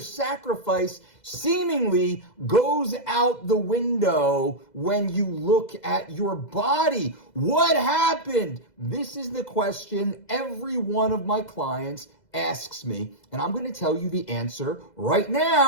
sacrifice seemingly goes out the window when you look at your body. What happened? This is the question every one of my clients asks me, and I'm going to tell you the answer right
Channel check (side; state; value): right; late; 2.0 ms